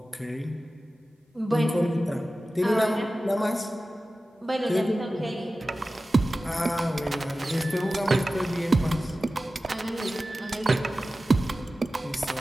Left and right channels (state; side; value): normal; both; correlation 0.95